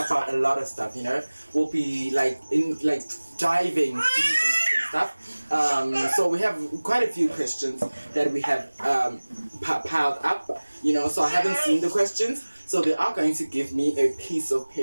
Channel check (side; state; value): both; inverted; correlation -1.00